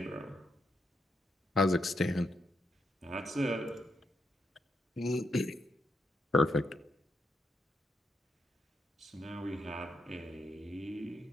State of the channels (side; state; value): both; normal; correlation 0.80